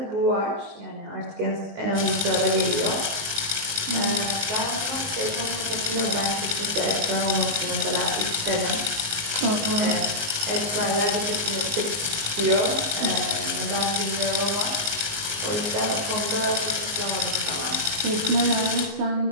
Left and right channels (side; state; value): left; late; 19 ms